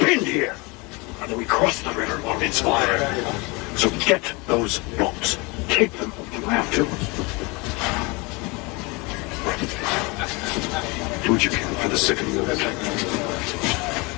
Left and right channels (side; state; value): right; quieter; 27.1 dB